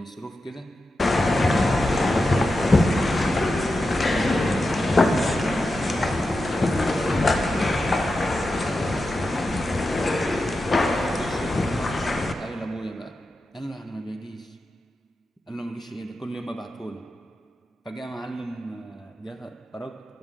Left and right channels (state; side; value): normal; both; correlation 0.90